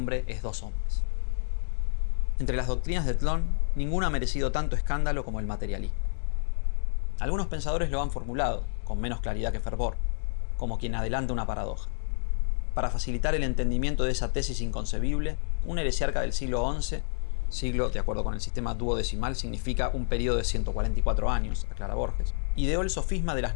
es dos hombres. Entre las doctrinas de Tlön, ninguna ha merecido tanto escándalo como el materialismo. Algunos pensadores lo han formulado, con menos claridad que fervor, como quien adelanta una paradoja. Para facilitar el entendimiento de esa tesis inconcebible, un heresiarca del siglo XI, siglo, de acuerdo con el sistema duodecimal, significa un periodo de 144 años, aclara Borges, ideó el sofisma de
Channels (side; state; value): right; silent; digital silence